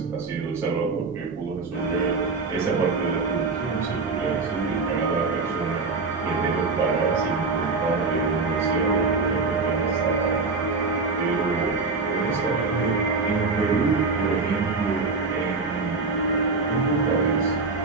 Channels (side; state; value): left; quieter; 4.1 dB